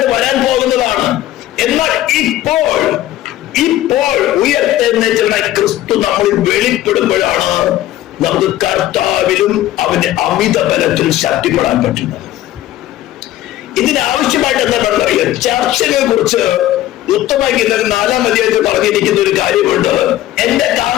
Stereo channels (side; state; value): right; quieter; 14.2 dB